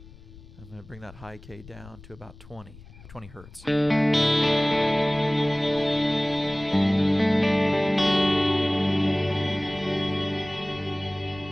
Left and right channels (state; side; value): noise; left; rumble, 20 dB below the sound